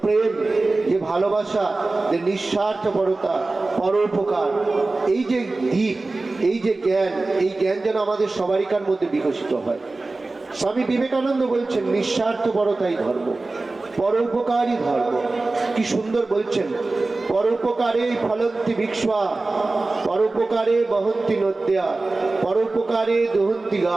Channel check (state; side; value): quieter; left; 3.3 dB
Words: প্রেম, যে ভালোবাসা, যে নিঃস্বার্থপরতা, পরোপকার, এই যে দিক, এই যে জ্ঞান, এই জ্ঞান যেন আমাদের সবারিকার মধ্যে বিকশিত হয়। স্বামী বিবেকানন্দ বলছেন নিঃস্বার্থপরতাই ধর্ম, পরোপকারই ধর্ম। কি সুন্দর বলছেন, পরোপকারে ফলন্তি বিক্ষ্বা, পরোপকারে বহন্তি নদ্যা, পরোপকারে দহন্তি